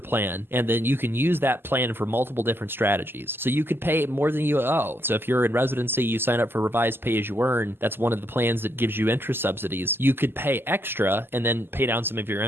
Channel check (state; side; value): late; left; 0.10 ms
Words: and then you can use that plan for multiple different strategies. So you could pay more than you owe. So if you're in residency, you sign up for revised pay as you earn. That's one of the plans that gives you interest subsidies. You could pay extra and then pay down some of your